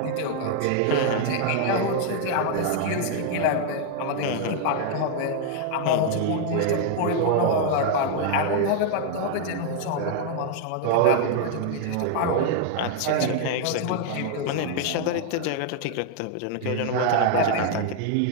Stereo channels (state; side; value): different; both; correlation 0.00